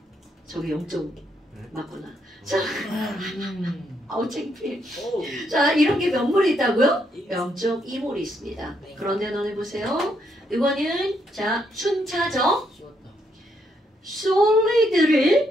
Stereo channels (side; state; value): both; normal; correlation 0.75